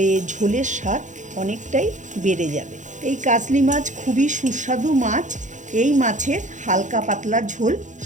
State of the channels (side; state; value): left; late; 0.36 ms